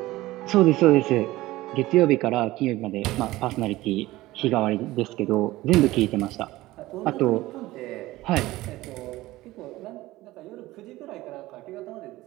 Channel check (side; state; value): left; quieter; 17.8 dB